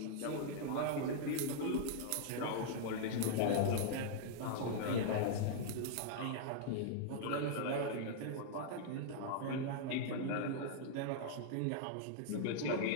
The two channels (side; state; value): both; different; correlation -0.01